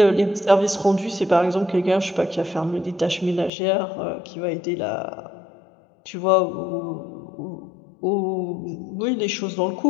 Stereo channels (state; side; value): drops out; right; at 3.5 s